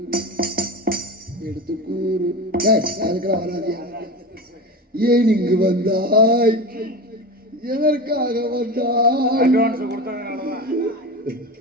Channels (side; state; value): both; normal; correlation 0.27